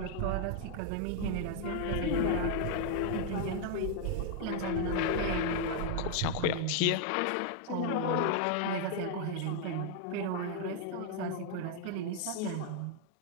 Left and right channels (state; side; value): different; both; correlation 0.00